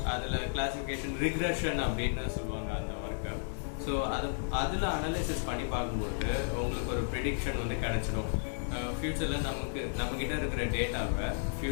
அதில் கிளாசிஃபிகேஷன் ரிக்ரெஷன் அப்படின்னு சொல்லுவாங்க அந்த ஒர்க்கை. ஸோ அதில் அனலைசிஸ் பண்ணி பார்க்கும்போது உங்களுக்கு ஒரு ப்ரிடிக்ஷன் வந்து கிடச்சிடும். ஃப்யூச்சரில் நம்மக்கிட்ட இருக்கிற டேட்டாவை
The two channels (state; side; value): silent; right; digital silence